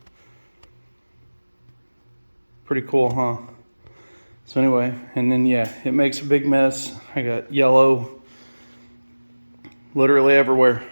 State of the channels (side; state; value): both; inverted; correlation -1.00